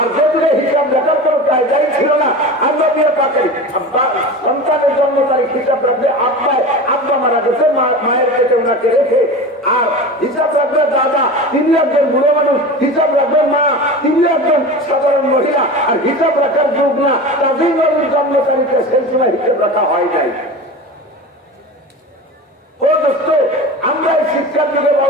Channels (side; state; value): both; normal; correlation 0.31